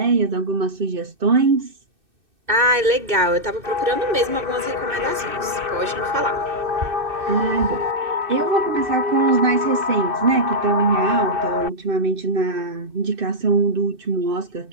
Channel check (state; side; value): late; left; 2.6 ms